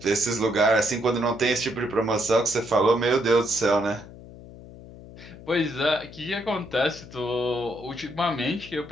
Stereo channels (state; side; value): noise; left; hum, 17 dB below the sound